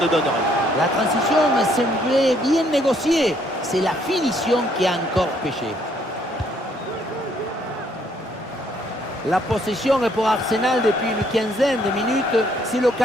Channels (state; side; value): normal; both; correlation 0.67